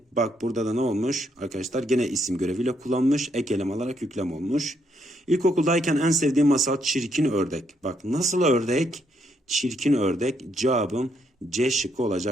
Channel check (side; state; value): both; normal; correlation 0.74